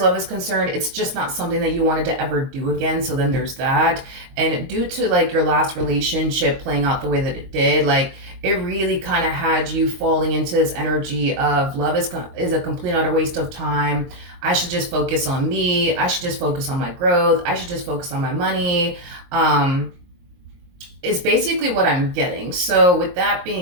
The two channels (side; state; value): left; late; 23 ms